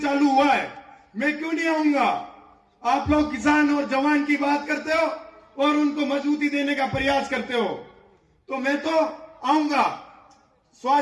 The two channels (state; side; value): identical; both; correlation 1.00